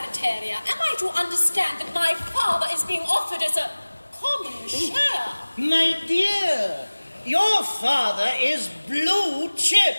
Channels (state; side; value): inverted; both; correlation -1.00